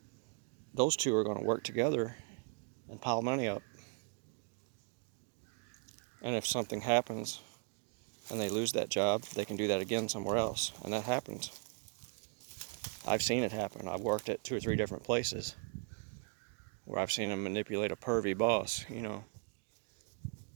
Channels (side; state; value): left; quieter; 36.7 dB